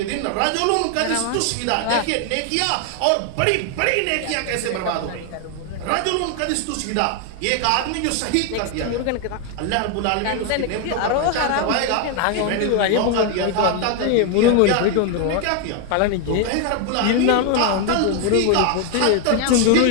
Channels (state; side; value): different; both; correlation 0.01